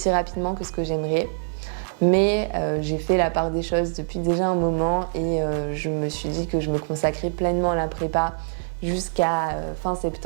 rapidement que ce que j'aimerais. Mais j'ai fait la part des choses depuis déjà un moment et je me suis dit que je me consacrais pleinement à la prépa jusqu'à fin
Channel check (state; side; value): silent; left; digital silence